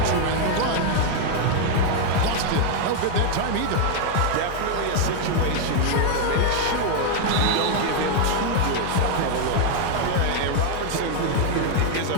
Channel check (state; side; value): different; both; correlation 0.01